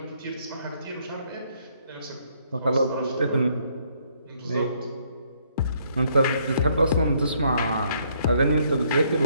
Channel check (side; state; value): both; inverted; correlation -0.69